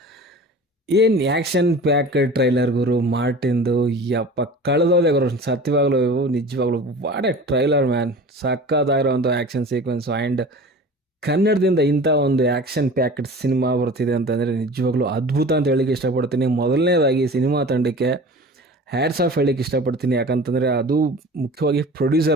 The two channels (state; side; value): normal; both; correlation 0.39